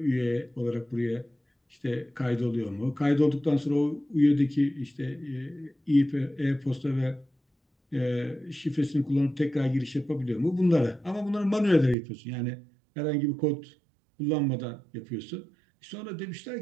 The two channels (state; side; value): drops out; left; at 12.0 s